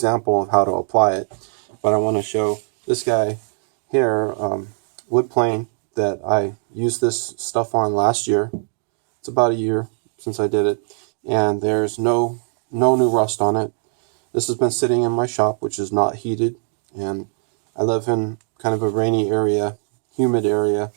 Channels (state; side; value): silent; left; 61 dB below the other